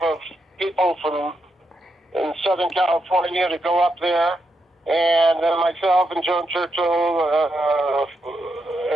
of people from in Southern California to go up there. And then myself and Joan Churchill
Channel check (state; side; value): normal; both; correlation 0.83